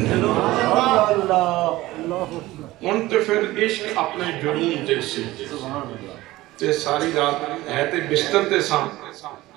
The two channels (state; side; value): quieter; left; 17.9 dB